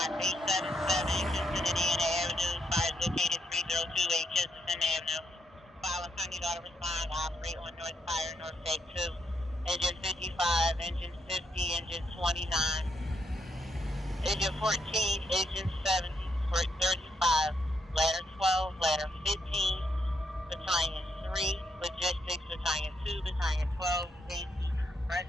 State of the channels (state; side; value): normal; both; correlation 0.78